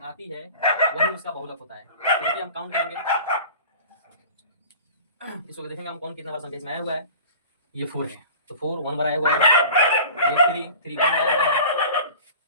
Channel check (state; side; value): inverted; both; correlation -0.40